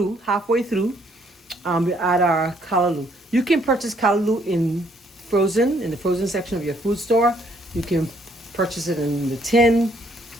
we add our callaloo. You can purchase callaloo in the frozen section of your food store. You can purchase it in the tin.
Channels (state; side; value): normal; both; correlation 0.67